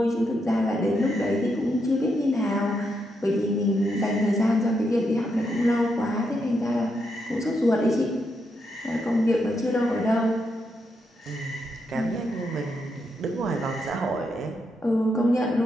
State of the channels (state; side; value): normal; both; correlation 0.81